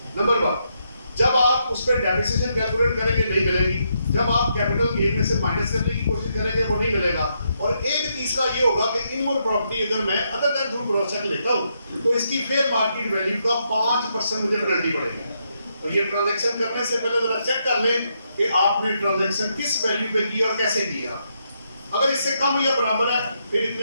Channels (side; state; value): both; inverted; correlation -0.79